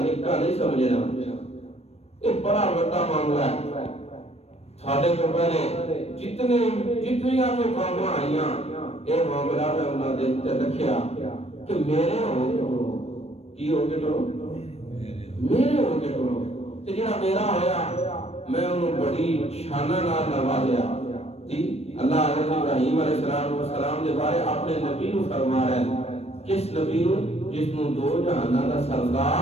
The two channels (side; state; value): right; late; 0.30 ms